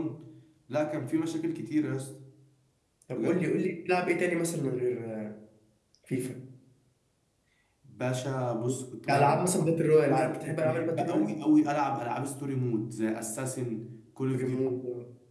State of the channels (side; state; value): both; identical; correlation 1.00